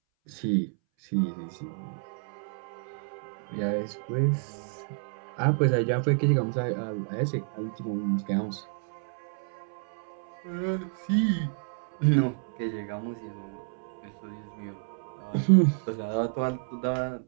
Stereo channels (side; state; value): left; silent; 58 dB below the other